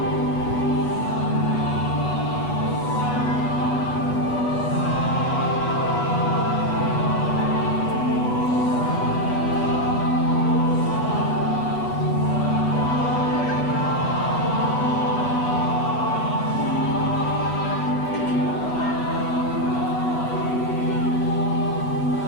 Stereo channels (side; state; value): right; late; 8.1 ms